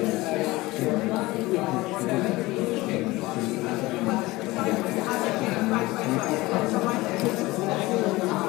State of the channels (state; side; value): quieter; right; 20.3 dB